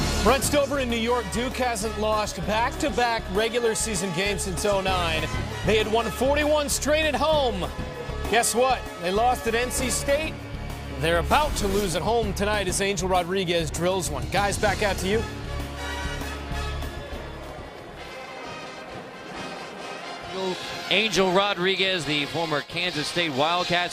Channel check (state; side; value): identical; both; correlation 1.00